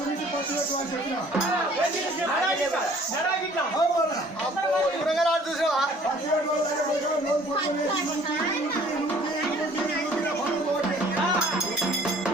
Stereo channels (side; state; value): both; normal; correlation 0.55